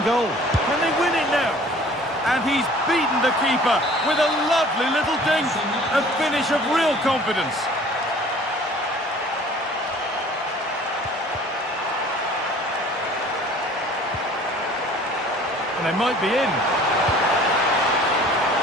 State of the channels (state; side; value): normal; both; correlation 0.50